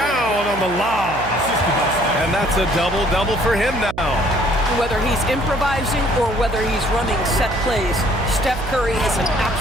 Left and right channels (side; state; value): right; noise; hum, 12 dB below the sound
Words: on the lob. And that's a double-double for him now. Whether he's improvising or whether he's running set plays, Steph Curry is an